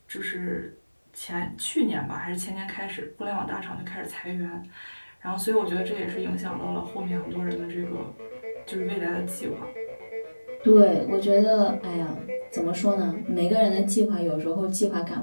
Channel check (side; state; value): both; inverted; correlation -1.00